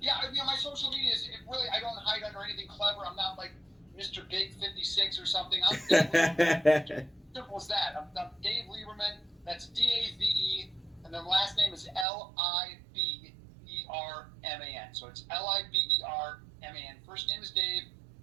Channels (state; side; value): drops out; left; at 12.1 s